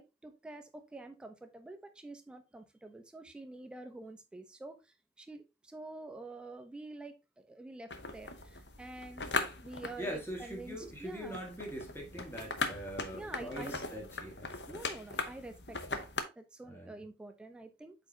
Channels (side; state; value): both; normal; correlation 0.31